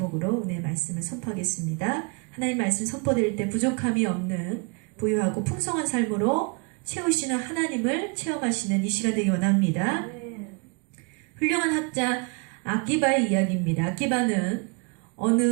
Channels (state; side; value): quieter; left; 33.7 dB